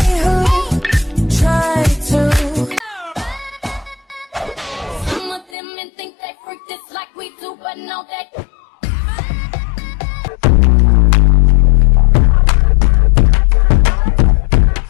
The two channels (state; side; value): drops out; right; at 5.5 s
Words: who tried to Some of them men think they freak this like we do, but no, they.